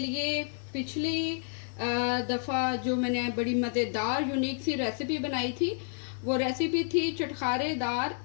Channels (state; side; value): silent; right; 56 dB below the other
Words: पिछली दफ़ा जो मैंने बड़ी मज़ेदार यूनिक सी रेसिपी बनाई थी, वो रेसिपी थी चटखारेदार